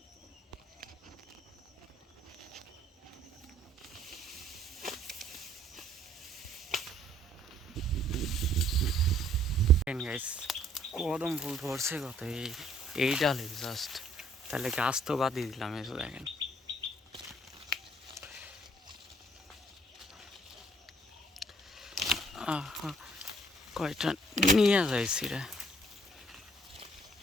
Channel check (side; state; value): both; normal; correlation 0.62